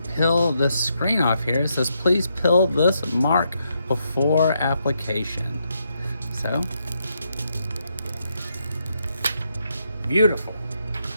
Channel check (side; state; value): both; inverted; correlation -0.79